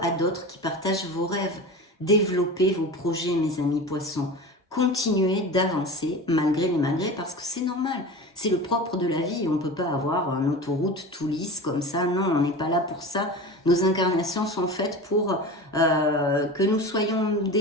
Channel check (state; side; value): normal; both; correlation 0.31